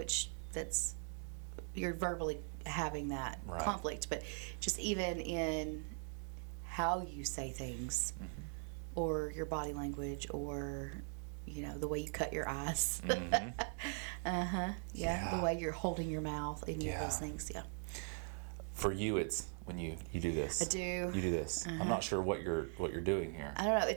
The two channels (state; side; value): silent; left; 51 dB below the other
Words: you're verbally having that Right. conflict. But just even in how you say things, or your body language, or the way you cut your eyes. Yeah, the way you're holding your mouth, any of those things. Yeah. For you, it's when you do this. I do. You do this. I'm not sure what you're doing here. I don't know.